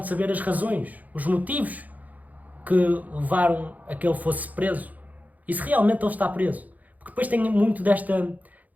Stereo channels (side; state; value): left; late; 0.079 ms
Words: saber as razões, os motivos que levaram a que ele fosse preso. E se realmente ele está preso. Porque depois tem muito